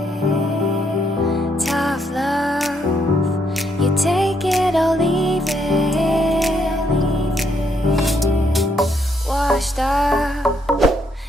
Tough love, you take it or leave it. Washed up,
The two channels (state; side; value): normal; both; correlation 0.74